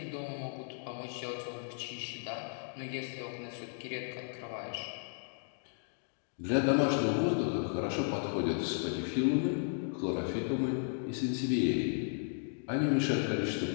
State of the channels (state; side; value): silent; right; digital silence